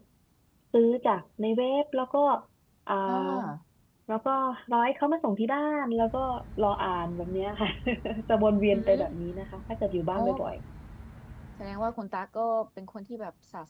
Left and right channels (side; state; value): both; identical; correlation 1.00